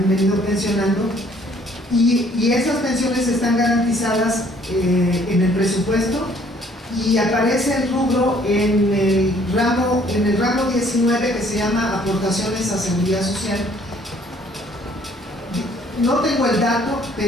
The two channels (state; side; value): normal; both; correlation 0.60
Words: venido pensionando, y esas pensiones están garantizadas en el presupuesto, y aparece el rubro en el ramo 19, que se llama aportaciones a seguridad social. No tengo el dato,